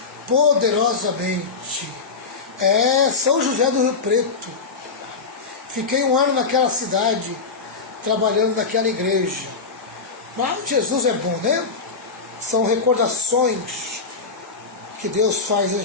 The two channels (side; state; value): right; quieter; 4.7 dB